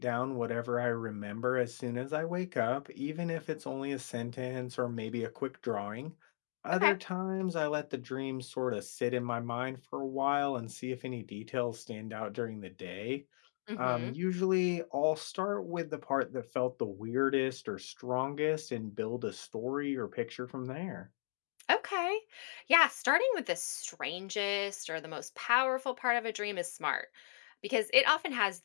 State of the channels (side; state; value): right; silent; digital silence